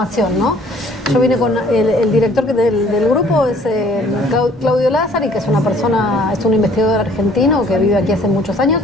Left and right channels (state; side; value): normal; both; correlation 0.57